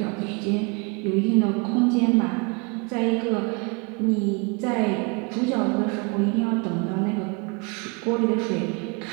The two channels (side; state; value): left; quieter; 31.0 dB